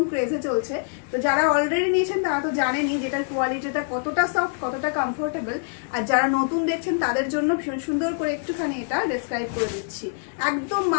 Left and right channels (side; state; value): right; silent; 62 dB below the other